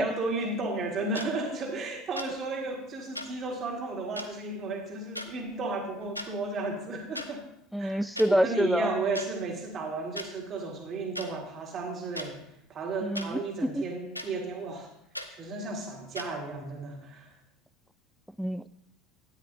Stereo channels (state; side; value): normal; both; correlation 0.58